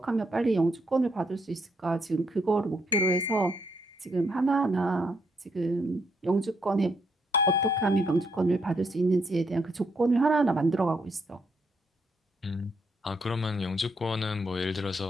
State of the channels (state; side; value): normal; both; correlation 0.75